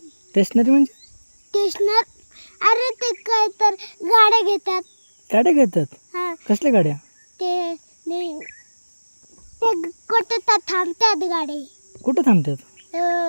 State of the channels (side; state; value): both; inverted; correlation -1.00